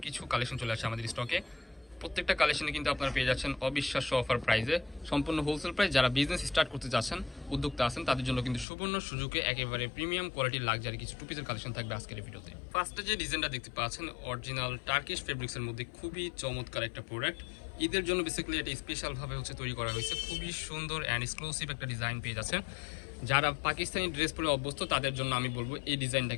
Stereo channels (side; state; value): right; drops out; at 8.7 s